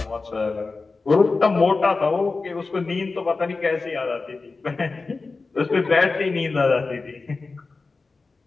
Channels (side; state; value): right; quieter; 3.9 dB